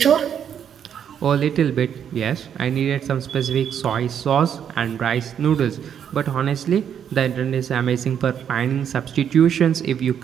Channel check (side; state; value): left; quieter; 8.6 dB